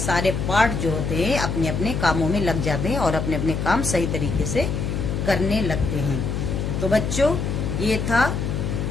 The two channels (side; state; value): left; noise; hum, 2 dB below the sound